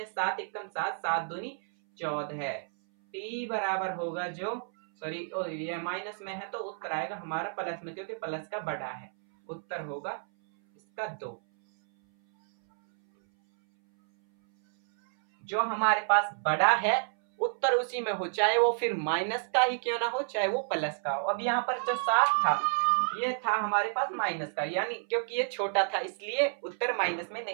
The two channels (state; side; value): silent; left; 58 dB below the other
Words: 7 एकम 7, 7 दूनी 14, टी बराबर होगा जो सॉरी ये माइनस में है तो उत्तर आएगा हमारा प्लस में, क्योंकि प्लस का बड़ा है, उत्तर होगा इसका 2। जो हमारे पास बड़ा है उत्तर उसी में हो, चाहे वो फिर माइनस का ही क्यों ना हो, चाहे वो प्लस का हो। अब यहाँ पर जो 7 था ये था हमारे पास माइनस का, यानी क्योंकि ये छोटा था इसलिए उत्तर माइनस में